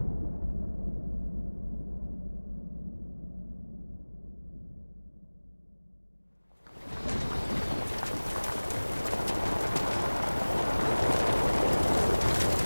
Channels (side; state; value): both; inverted; correlation -1.00